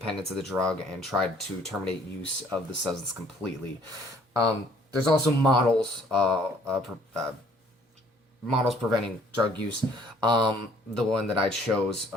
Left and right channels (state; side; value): normal; both; correlation 0.60